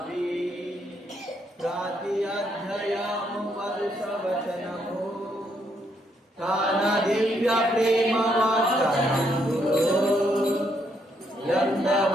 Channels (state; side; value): normal; both; correlation 0.74